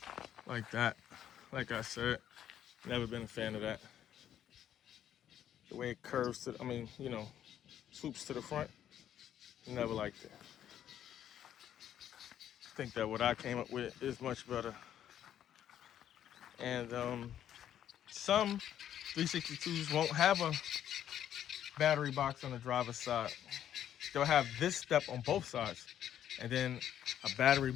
Like that. Like I said, never been a fan of that. The way it curves to, swoops to the front, never liked it. I think that what I came up with is much better. And some 362s won't have a battery box on the driver's side. They'll have this step on both sides, and then a battery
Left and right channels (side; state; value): right; quieter; 10.5 dB